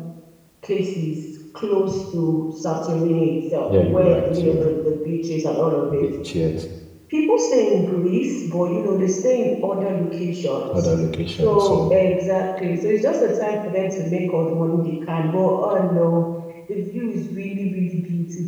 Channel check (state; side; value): identical; both; correlation 1.00